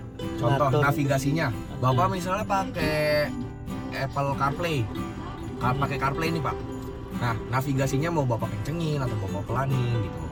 Contoh ngatur. navigasinya. Bapak misalnya pakai Apple CarPlay. Pakai CarPlay nih Pak. Nah, navigasinya mau Bapak kencengin atau Bapak pelanin gitu.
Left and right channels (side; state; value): both; identical; correlation 1.00